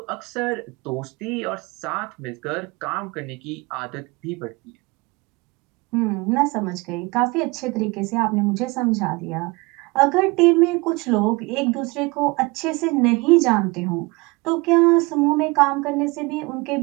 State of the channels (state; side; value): quieter; left; 25.0 dB